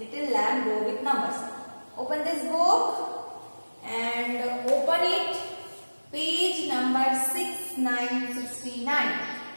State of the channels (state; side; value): inverted; both; correlation -1.00